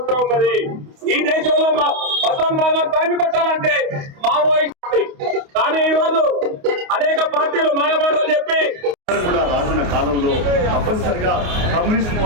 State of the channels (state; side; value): late; left; 28 ms